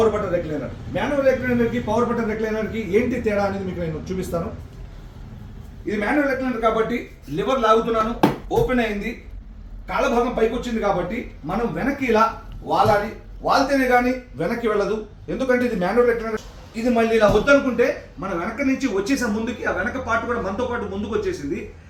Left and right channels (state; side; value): identical; both; correlation 1.00